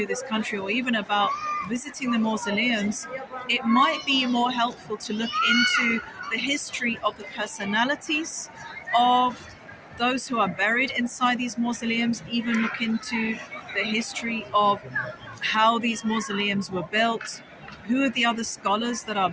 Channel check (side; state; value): both; identical; correlation 1.00